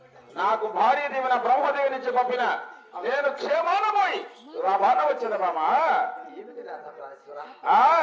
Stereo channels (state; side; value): identical; both; correlation 1.00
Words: నాకు భార్య దీవెన బ్రహ్మదేవి నుంచి పంపిన నేను క్షేమాన పోయి లాభాన వచ్చింది మామా.